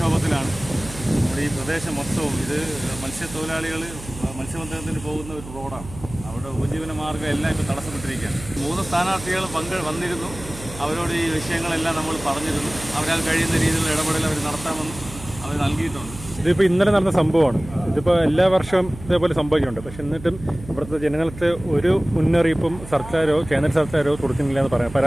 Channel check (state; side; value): noise; right; hum, 14 dB below the sound